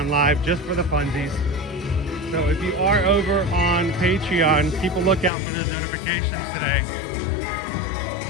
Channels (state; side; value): drops out; right; at 5.3 s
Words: live just for the funsies. So if you are over on Patreon, keep a lookout for those notifications today.